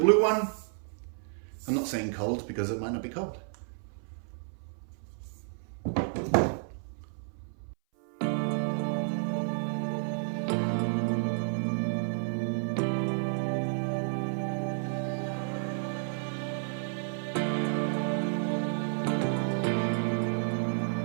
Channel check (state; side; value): silent; left; 57 dB below the other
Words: one. I'm not saying cold because it might not be cold.